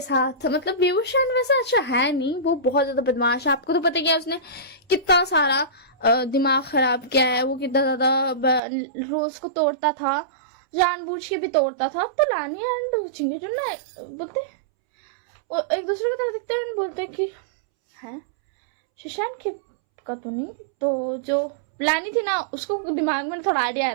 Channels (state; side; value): drops out; left; at 8.6 s